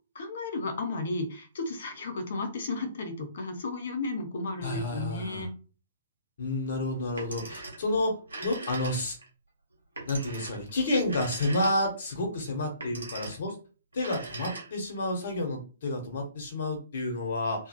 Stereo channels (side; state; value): both; inverted; correlation -0.58